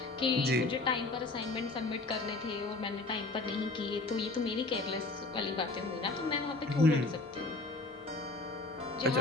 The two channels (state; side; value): quieter; right; 3.2 dB